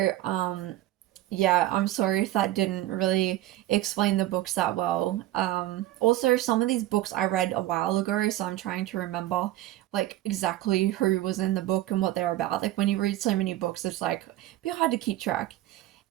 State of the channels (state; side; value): quieter; left; 15.0 dB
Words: yeah, I'm sorry if that didn't really explain the books that well. Also, some of these books I read a while ago, so I'm trying to remember like exactly who was in the book and what they're about. Like when you read so many books, it's like a bit hard to keep track.